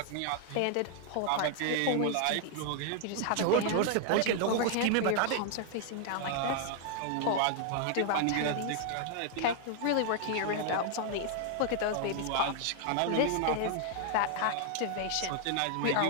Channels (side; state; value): both; different; correlation 0.00